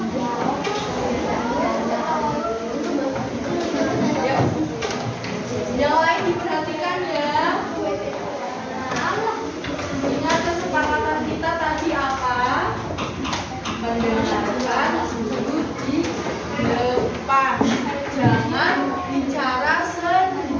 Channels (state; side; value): identical; both; correlation 1.00